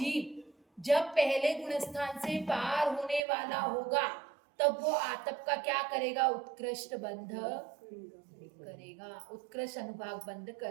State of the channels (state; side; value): drops out; left; at 3.2 s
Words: जब पहले गुणस्थान से पार होने वाला होगा तब वो आतप का क्या करेगा? उत्कृष्ट बंध करेगा, उत्कृष्ट अनुभाग बंध